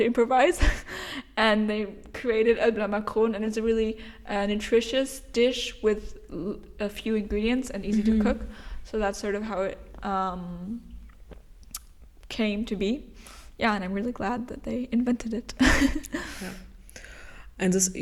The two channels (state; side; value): identical; both; correlation 1.00